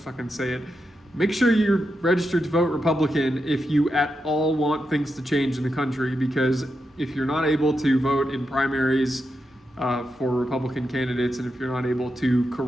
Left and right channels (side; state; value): both; normal; correlation 0.87